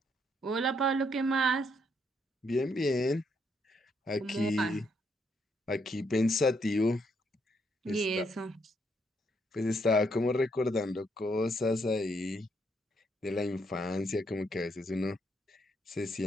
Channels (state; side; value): normal; both; correlation 0.74